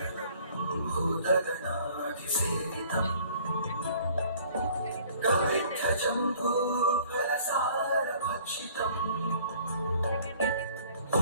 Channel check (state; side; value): inverted; both; correlation -0.55